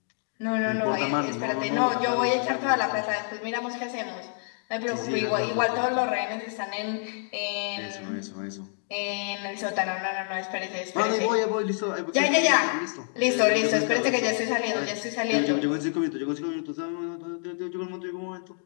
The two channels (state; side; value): silent; right; 60 dB below the other